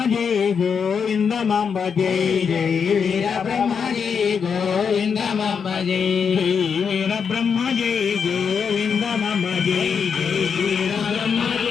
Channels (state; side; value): quieter; right; 6.5 dB